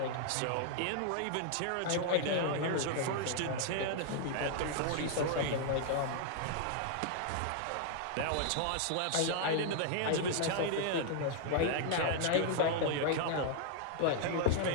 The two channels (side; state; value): both; different; correlation -0.01